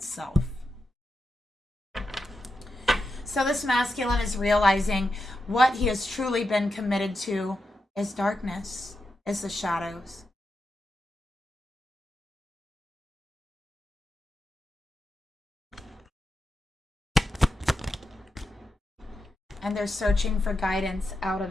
So this masculine is realizing what he has truly been committed to is darkness, is the shadows. And they're searching for guidance out of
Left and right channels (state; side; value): normal; both; correlation 0.88